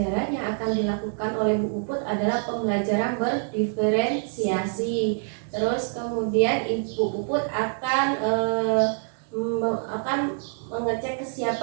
yang akan dilakukan oleh Bu Puput adalah pembelajaran berdiferensiasi. Terus kemudian Ibu Puput akan mengecek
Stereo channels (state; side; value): silent; left; 61 dB below the other